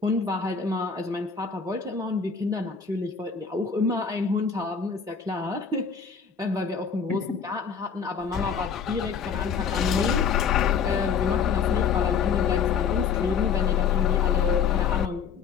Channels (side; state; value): right; quieter; 6.4 dB